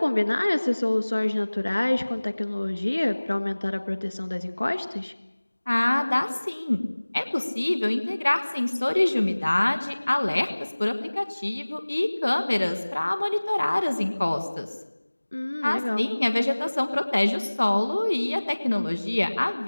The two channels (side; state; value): both; inverted; correlation -1.00